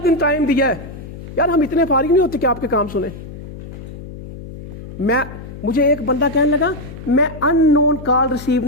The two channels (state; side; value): noise; left; hum, 13 dB below the sound